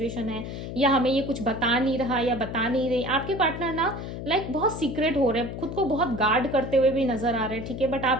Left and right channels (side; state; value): left; noise; hum, 7 dB below the sound